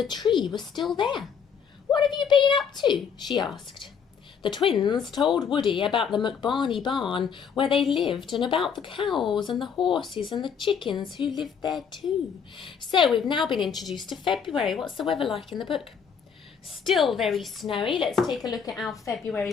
tree was still there. "What have you been up to?" she asked. The twins told Woody about the McBarney barn where they lived and about the cows and the horses and the chickens who lived there too. So we've now been introduced to February. What's the weather like in the book? Still very snowy. Let's take a look at our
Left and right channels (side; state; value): right; quieter; 6.9 dB